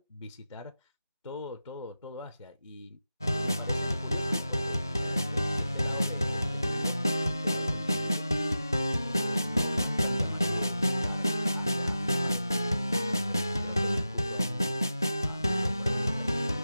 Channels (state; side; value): inverted; both; correlation -0.92